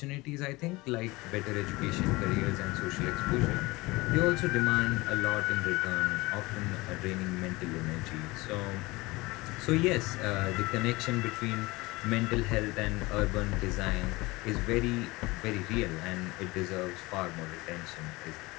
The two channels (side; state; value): right; quieter; 22.1 dB